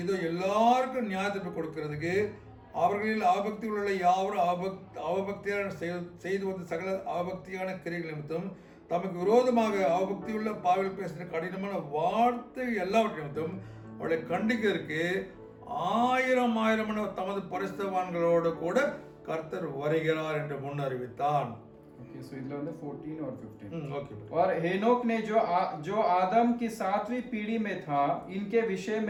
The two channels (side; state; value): both; identical; correlation 1.00